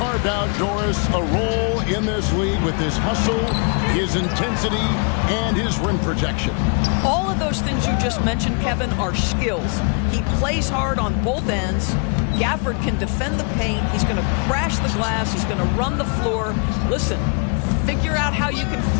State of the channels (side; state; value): right; quieter; 38.9 dB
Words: out Doris a role in this league with his hustle, his intensity, and his rim protection. All of those things you just mentioned, Kevin, are skills. He plays hard on both ends. Gafford can defend the paint. He's going to crash the glass. He's going to run the floor. Listen, figure out how you can